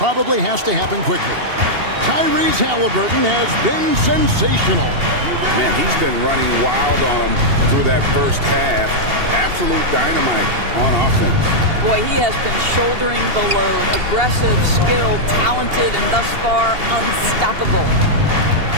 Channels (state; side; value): late; left; 2.8 ms